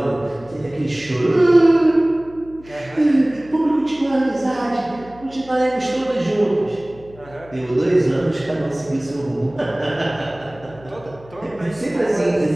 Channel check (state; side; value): noise; left; hum, 22 dB below the sound